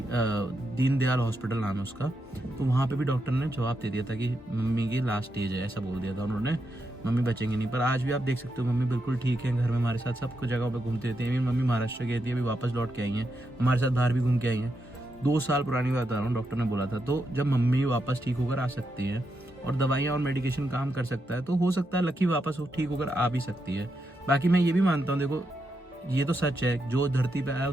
दीनदयाल हॉस्पिटल नाम है उसका। तो वहाँ पे भी डॉक्टर ने जवाब दे दिया था कि मम्मी की लास्ट स्टेज है, ऐसा बोल दिया था उन्होंने, मम्मी बचेंगे नहीं। पर आज भी आप देख सकते हो मम्मी बिल्कुल ठीक है, घर में हमारे साथ सब कुछ जगहों पर घूमती रहती है। मम्मी महाराष्ट्र गई थी, अभी वापस लौट के आई हैं, हमारे साथ बाहर भी घूम के आई हैं। 2 साल पुरानी बात बता रहा हूँ, डॉक्टर ने बोला था। तो जब मम्मी वापस ठीक होकर आ सकती है और दवाइयाँ और मेडिकेशन काम कर सकता है, तो हो सकता है लकी वापस ठीक होकर आ भी सकती है। बाकी मैं ये भी मानता हूँ, देखो ये तो सच है, जो धरती पे आया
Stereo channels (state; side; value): normal; both; correlation 0.83